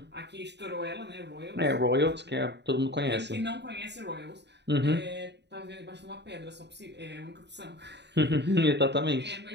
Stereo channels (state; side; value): late; left; 0.50 ms